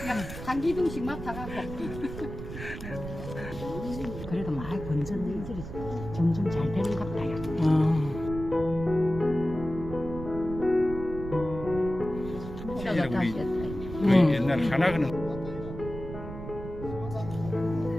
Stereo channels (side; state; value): right; noise; rumble, 10 dB below the sound